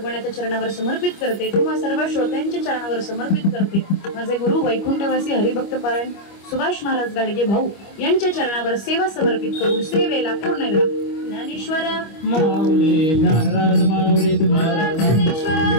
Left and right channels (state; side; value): late; right; 25 ms